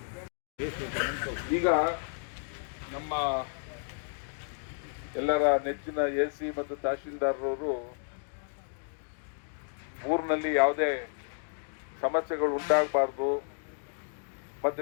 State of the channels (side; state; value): right; silent; digital silence